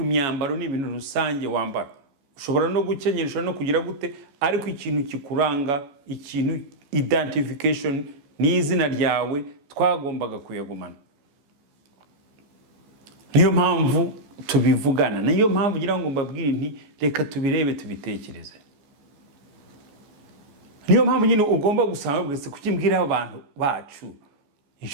imyambaro ni ibintu rusange wambara, ushobora no gukenyera, ushobora no kugira gute, ariko ikintu kikuranga, ikintu identification ni izina ryawe, twagombaga kuyagumana. Niyo mpamvu tubivugana, niyo mpamvu ngira ngo mbabwire nti reka tubirebe, tubitekereze. Niyo mpamvu nyine ugomba gusanga bwese kukimbwira abantu bacu,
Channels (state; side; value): late; left; 14 ms